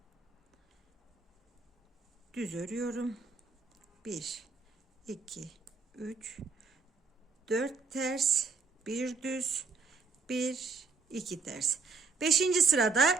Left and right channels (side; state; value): left; quieter; 4.6 dB